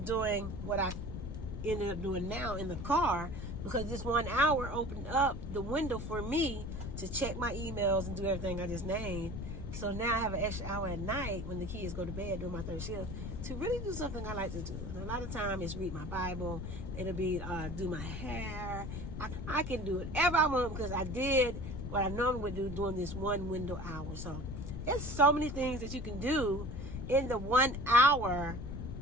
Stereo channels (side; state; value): left; noise; rumble, 6 dB below the sound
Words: doing what I ended up doing now in the car, because this 1 hour opened up the window for me to check my emails and do everything I just named. So now I have an extra hour at night when the kids go to bed during my third shift to really do something I like to do. And a lot of time it's read my Bible. It'll be do my hair. I can do whatever I want because I did what I normally would do during this 1 window hour. So there's so many things that you can do in the 1 hour